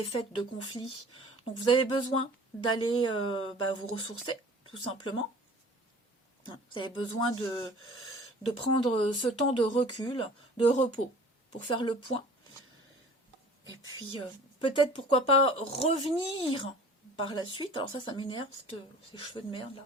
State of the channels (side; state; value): both; normal; correlation 0.46